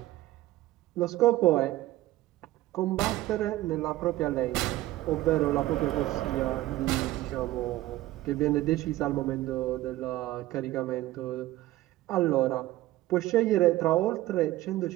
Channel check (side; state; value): left; quieter; 16.1 dB